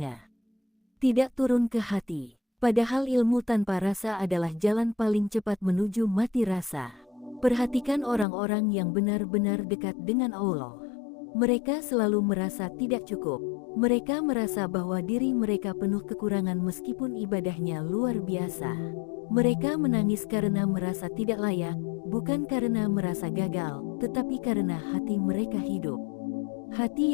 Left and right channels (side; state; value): right; drops out; at 8.2 s